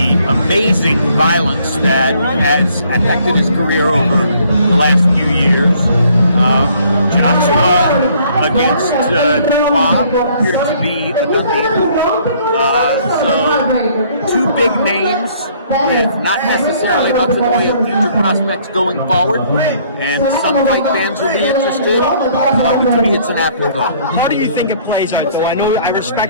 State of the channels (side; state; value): both; inverted; correlation -0.62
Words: amazing violence that has affected his career over the last few years. Joshua against Dubois appears to be a good deal. So, two big names with not necessarily much in the way of future prospects going forward, and some fight fans will be interested. To me, it's an afterthought. How do you think it plays out, though? I